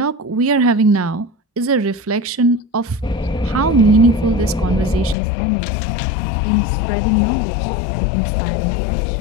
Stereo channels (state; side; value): drops out; right; at 5.2 s